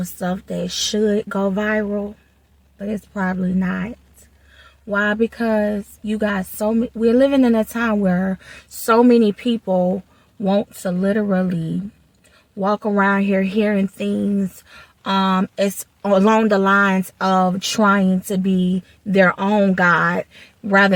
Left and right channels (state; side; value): identical; both; correlation 1.00